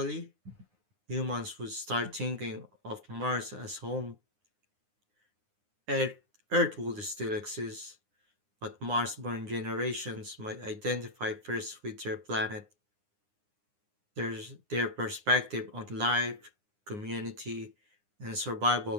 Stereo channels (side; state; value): left; late; 9.7 ms